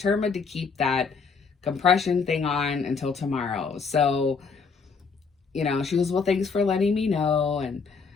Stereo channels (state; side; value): quieter; right; 5.2 dB